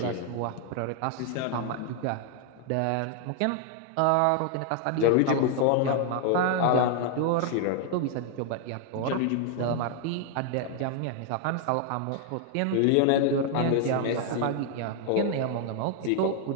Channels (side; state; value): both; different; correlation 0.00